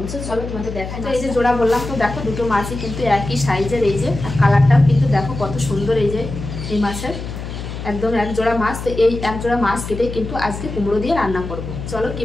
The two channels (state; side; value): noise; left; hum, 8 dB below the sound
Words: চলো তোমাদের দেখাই। তো এই যে জোড়া বললাম, তো দেখো দুটো মাছই কিন্তু একই সাইজের। এই যে আর কালারটাও কিন্তু দেখো কত সুন্দর। এই যে এই মাছের একদম এক জোড়া মাছ। তো এই এক জোড়া মাছ কেটে কিন্তু আজকে কুমড়ো দিয়ে রান্না করব। চলো